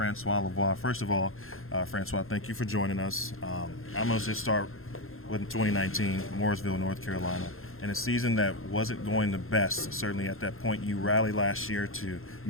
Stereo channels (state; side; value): late; right; 0.61 ms